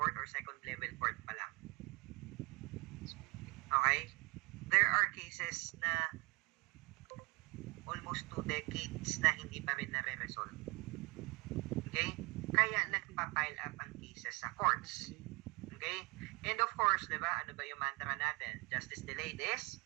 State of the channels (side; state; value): left; quieter; 26.6 dB